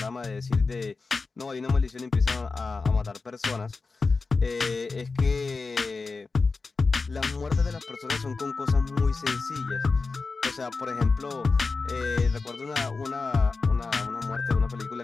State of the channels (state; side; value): quieter; right; 4.2 dB